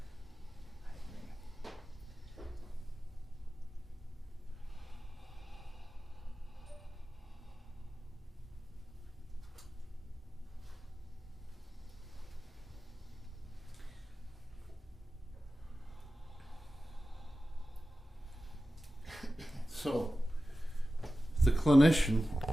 I agree. So, the clinician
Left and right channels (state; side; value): normal; both; correlation 0.94